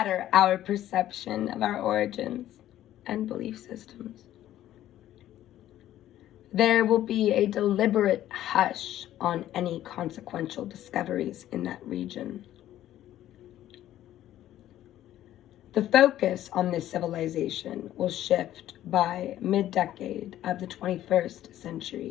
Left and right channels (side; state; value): right; quieter; 12.9 dB